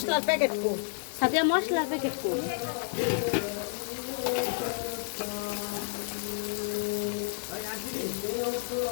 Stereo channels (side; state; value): right; silent; digital silence